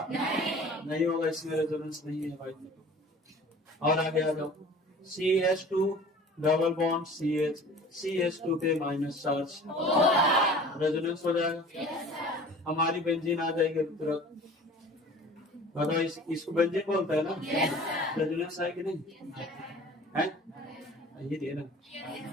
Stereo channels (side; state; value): both; normal; correlation 0.44